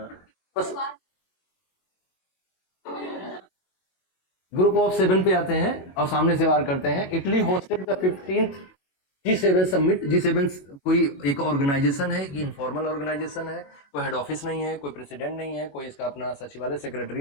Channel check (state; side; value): late; right; 22 ms